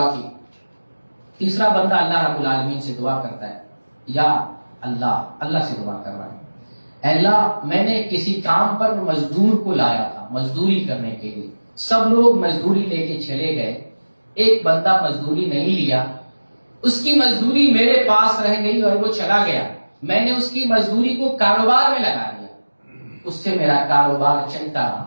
کی، تیسرا بندہ اللہ رب العالمین سے دعا کرتا ہے، یا اللہ سے دعا کر رہا ہے، اے اللہ میں نے کسی کام پر مزدور کو لایا تھا مزدوری کرنے کے لیے، سب لوگ مزدوری لے کے چلے گئے، ایک بندہ مزدوری نہیں لیا، اس کی مزدوری میرے پاس رہ گئی اور وہ چلا گیا، میں نے اس کی مزدوری کو کاروبار میں لگا دیا، اس سے میرا کاروبار چلتا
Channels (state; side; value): inverted; both; correlation -1.00